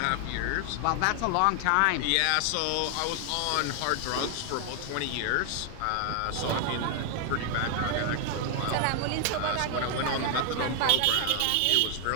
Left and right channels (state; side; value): different; both; correlation 0.00